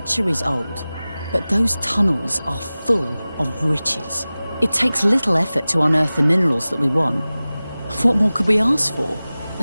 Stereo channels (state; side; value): inverted; both; correlation -0.98